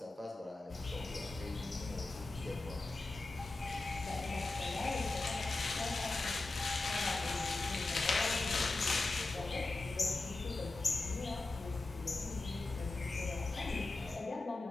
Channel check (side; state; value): right; quieter; 3.2 dB